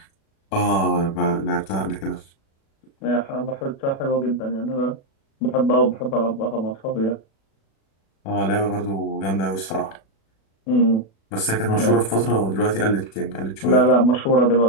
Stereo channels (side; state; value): right; late; 36 ms